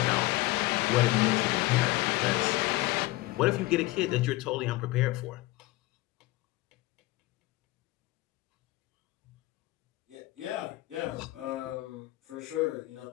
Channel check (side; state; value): right; quieter; 19.5 dB